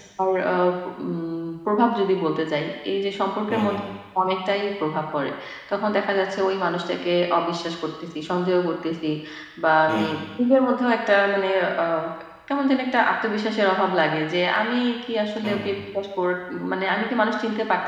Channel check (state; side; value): identical; both; correlation 1.00